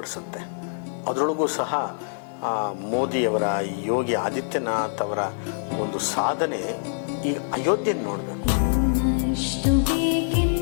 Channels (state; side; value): silent; right; digital silence